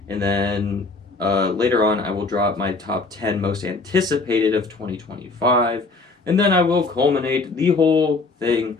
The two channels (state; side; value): quieter; right; 3.8 dB